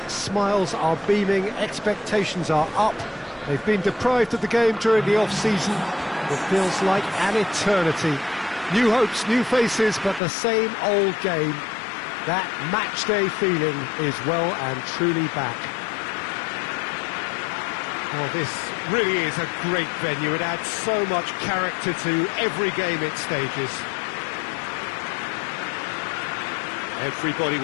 Smiles are beaming, expectations are up. They've been deprived of the game during the off-season. It feels like an eternity. New hopes, new faces, but the same old game. That match-day feeling is well and truly back. Well, this really is a great venue. It adds so much character to every game it stages. Everybody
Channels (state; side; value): drops out; right; at 10.2 s